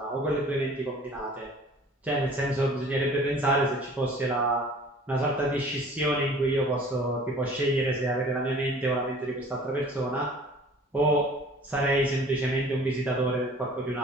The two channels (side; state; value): both; normal; correlation 0.48